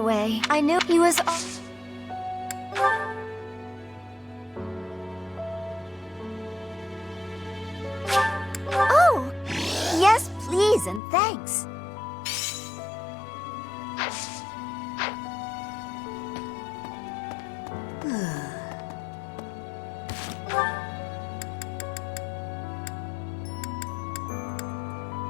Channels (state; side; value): drops out; right; at 11.0 s